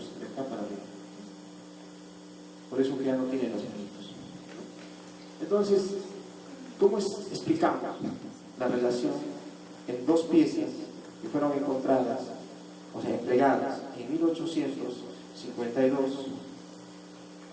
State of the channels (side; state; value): both; identical; correlation 1.00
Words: de acá para arriba. Por eso que ya no tiene los manitos. Entonces, ¿cómo explicamos la relación en dos piezas que fueron encontradas, o sea, entregadas en 1852,